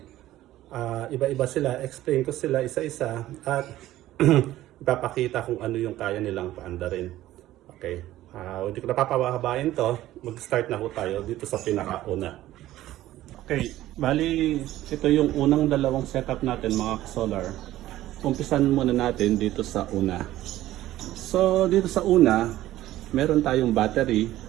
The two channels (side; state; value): left; quieter; 14.8 dB